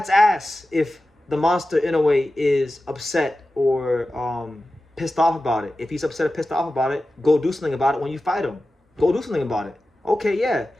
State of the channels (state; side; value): normal; both; correlation 0.94